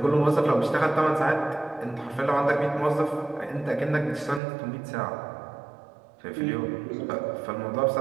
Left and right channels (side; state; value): left; drops out; at 4.4 s